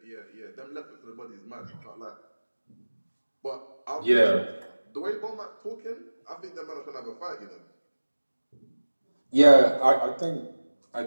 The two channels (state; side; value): inverted; both; correlation -1.00